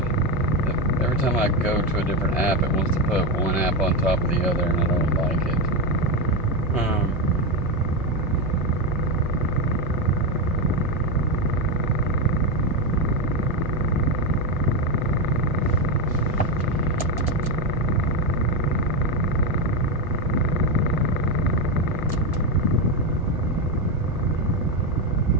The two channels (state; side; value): normal; both; correlation 0.10